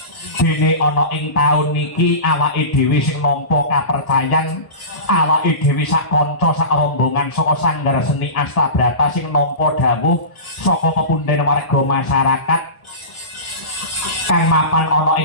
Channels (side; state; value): right; late; 1.7 ms